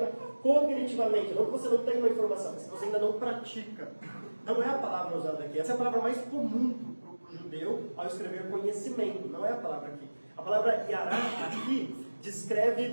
cognitivamente, não que você não tenha uma informação, mas que você ainda não pratica. Não é a palavra usada aqui. Essa é a palavra mais comum para o judeu ao escrever conhecimento. Não é a palavra aqui. A palavra yará aqui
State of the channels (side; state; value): both; inverted; correlation -1.00